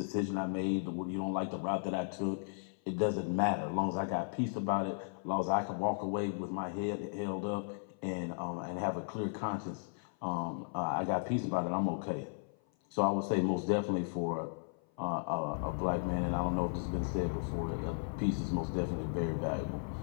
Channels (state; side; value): silent; right; 54 dB below the other